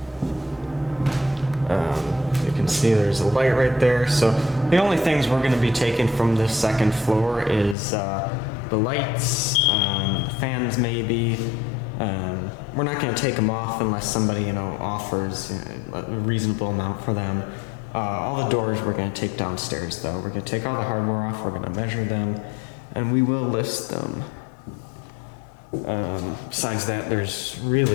You can see there's a light right there. So the only things we're going to be taking from this second floor is the lights, fans maybe. We're not going to take them off unless somebody, offers a reasonable amount for them. All the doors we're going to take downstairs, though. We're going to take all the hardware off, we're going to measure them, and we will list them. Besides that, there's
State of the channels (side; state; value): right; drops out; at 7.8 s